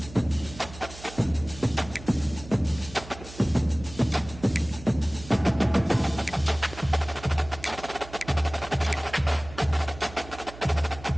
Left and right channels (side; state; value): right; noise; hum, 16 dB below the sound